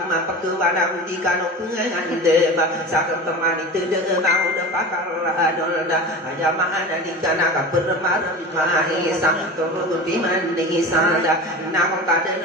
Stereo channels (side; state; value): both; normal; correlation 0.32